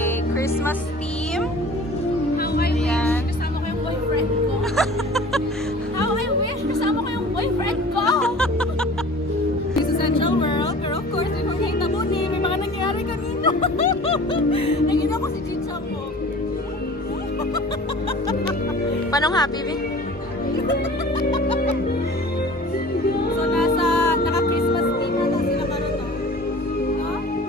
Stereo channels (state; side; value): normal; both; correlation 0.43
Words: Christmas theme. How I wish kasama ko yung boyfriend ko. How I wish kasama ko yung boyfriend ko. This is Central World, pero of course, may mga ni, may mga nangyari kanina. Nakita ko si Chicha mo. Panong happy, Vi? So, naka-Christmas theme na daw sila karon, no? No?